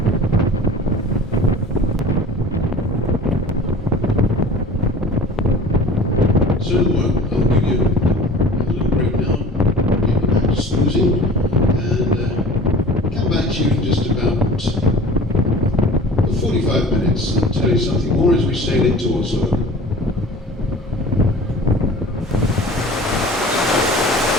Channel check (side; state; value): both; normal; correlation 0.42